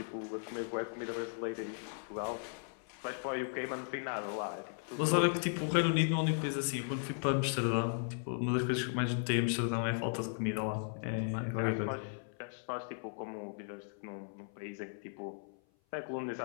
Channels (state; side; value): silent; right; 53 dB below the other